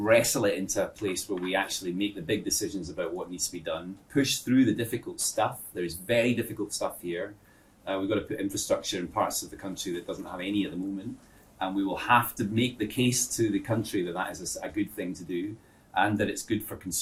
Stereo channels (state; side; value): identical; both; correlation 1.00